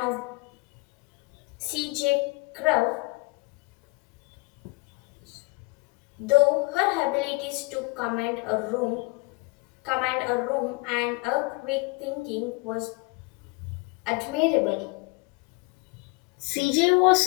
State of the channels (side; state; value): right; quieter; 26.9 dB